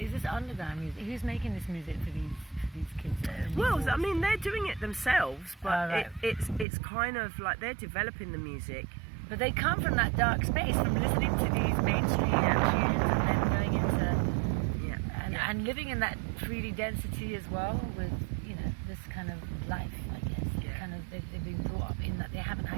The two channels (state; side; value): drops out; left; at 6.7 s